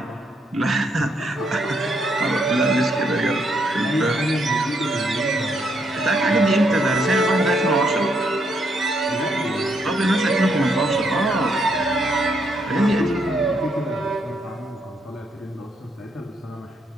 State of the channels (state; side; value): normal; both; correlation 0.75